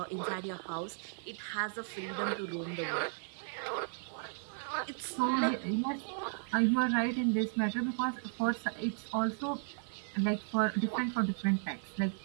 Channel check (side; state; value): left; silent; digital silence